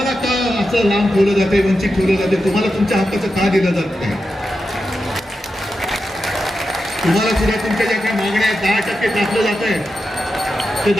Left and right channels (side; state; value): both; normal; correlation 0.89